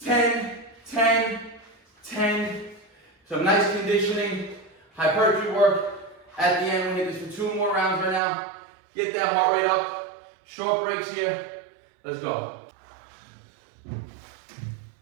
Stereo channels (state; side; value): drops out; left; at 8.2 s